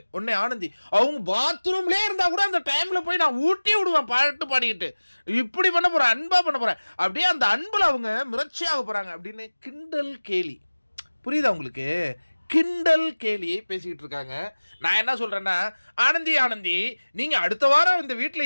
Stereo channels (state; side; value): inverted; both; correlation -1.00